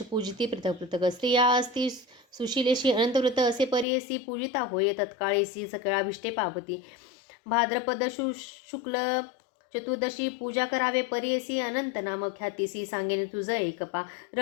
पूजिती पृथक पृथक. स्त्रिया असती सुशीलेशी, अनंतव्रत असे परियसी. पूजिता होय तत्काळेसी, सकळाभिष्टे पावती. भाद्रपद शुक्ल चतुर्दशी, पूजा करावे परियसी. अनंत नाम ख्यातीसी, सांगेन तुझ एकपा.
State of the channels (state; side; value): drops out; right; at 3.9 s